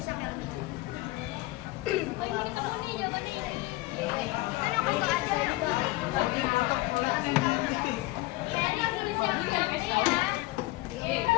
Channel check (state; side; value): quieter; right; 19.8 dB